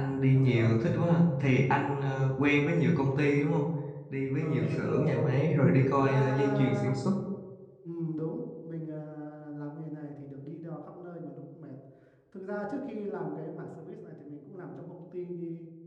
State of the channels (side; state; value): both; identical; correlation 1.00